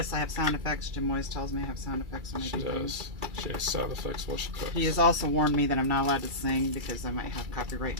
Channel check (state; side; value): late; left; 2.3 ms